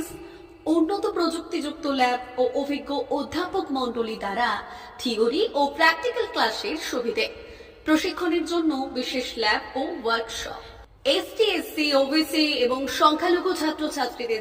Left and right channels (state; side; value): identical; both; correlation 1.00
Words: উন্নত প্রযুক্তিযুক্ত ল্যাব ও অভিজ্ঞ অধ্যাপক মণ্ডলী দ্বারা থিওরি ও প্র্যাকটিক্যাল ক্লাসের সুবিধে, প্রশিক্ষণের জন্য বিশেষ ল্যাব ও ওয়ার্কশপ, ST, SC, OBC এবং সংখ্যালঘু